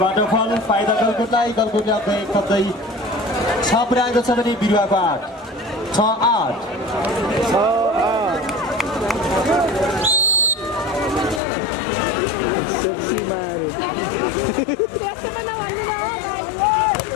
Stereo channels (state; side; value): drops out; right; at 11.4 s